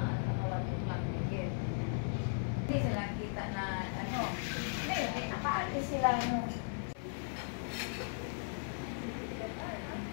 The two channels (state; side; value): silent; right; digital silence